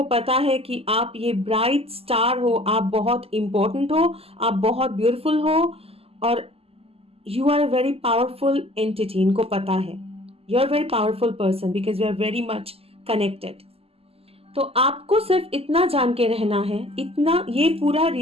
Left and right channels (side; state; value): left; late; 0.29 ms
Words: पता है कि आप ये ब्राइट स्टार हो, आप बहुत इंपॉर्टेंट हो, आप बहुत ब्यूटीफुल हो, और you are a very powerful entity. इनको पता है you are very powerful person because you are very much connected. तो आपको सिर्फ इतना जान के रहना है, इतना, ये पूरा